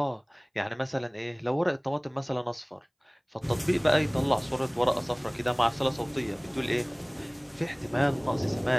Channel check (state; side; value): identical; both; correlation 1.00